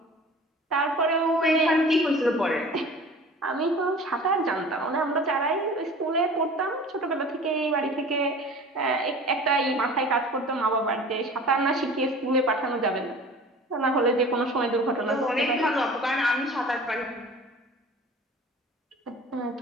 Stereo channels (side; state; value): both; normal; correlation 0.42